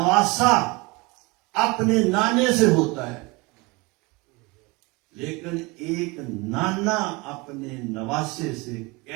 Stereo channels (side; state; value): left; quieter; 25.6 dB